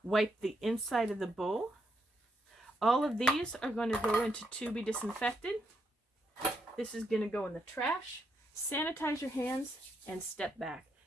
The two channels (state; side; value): normal; both; correlation 0.78